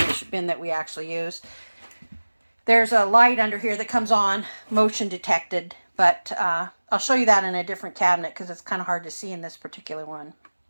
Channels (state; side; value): inverted; both; correlation -1.00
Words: bin that we actually use. There's a light under here that comes on, motion detected, but I'll show you that in a different cabinet because it's kind of hard to see in this particular one.